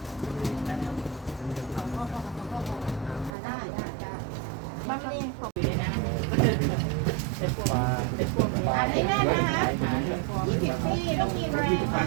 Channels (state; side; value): drops out; left; at 3.3 s